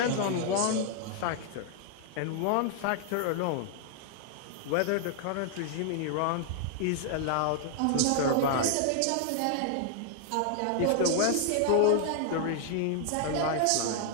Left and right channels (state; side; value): different; both; correlation 0.00